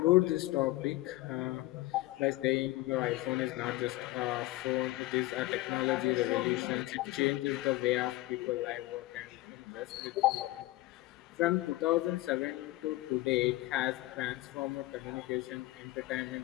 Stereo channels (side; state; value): right; quieter; 18.4 dB